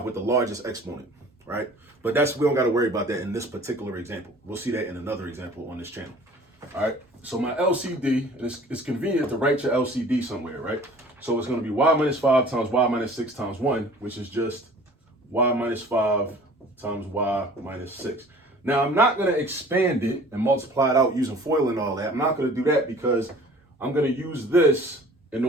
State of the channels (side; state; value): both; normal; correlation 0.48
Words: with the largest exponent, right? But we don't got to worry about that in this particular example. We'll see that in another example on this channel. All right. So my LCD, and it's convenient to write your LCD somewhere, right? So it's going to be y minus 5 times y minus 6 times 1, which is just y minus 5 times y minus 6. Now, I'm not going to expand it and multiply it out using FOIL and all that. I'm not going to do that because I'm going to use this in